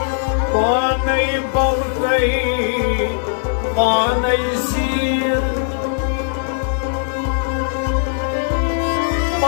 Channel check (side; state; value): right; silent; digital silence